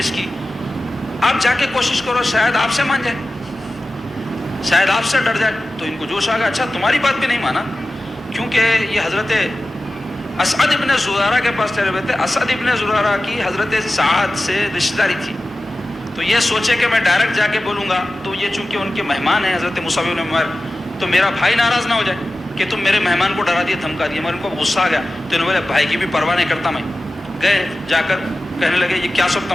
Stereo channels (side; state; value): both; normal; correlation 0.95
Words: کی، آپ جا کے کوشش کرو شاید آپ سے مان جائے، شاید آپ سے ڈر جائے۔ تو ان کو جوش آ گیا، اچھا تمہاری بات بھی نہیں مانا، کیونکہ یہ حضرت اسعد ابن زرارہ کے پاس ٹھہرے ہوئے تھے، اسعد ابن زرارہ کی حضرت سعد سے رشتہ داری تھی، تو یہ سوچے کہ میں ڈائریکٹ جا کے بولوں گا تو یہ چونکہ ان کے مہمان ہیں حضرت مصعب بن عمیر، تو میرا بھائی ناراض نہ ہو جائے کہ تم میرے مہمان کو ڈرا دیے، دھمکا دیے، مگر ان کو غصہ آ گیا، تو انہوں نے بولے بھائی کی بھی پرواہ نہیں کرتا میں۔ گئے جا کر کہنے لگے یہ کیا سب